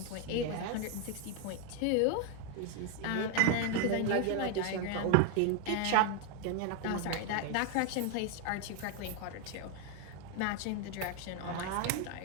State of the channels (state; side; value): different; both; correlation 0.01